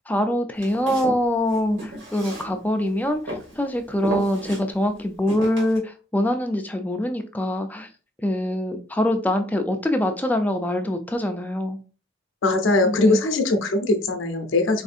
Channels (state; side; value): normal; both; correlation 0.67